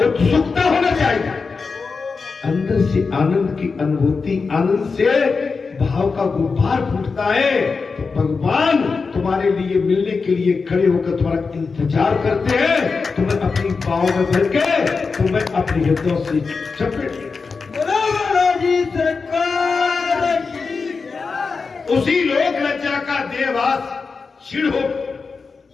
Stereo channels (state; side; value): quieter; right; 4.7 dB